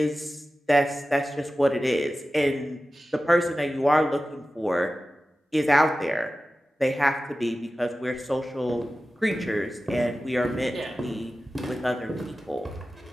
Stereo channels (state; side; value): normal; both; correlation 0.95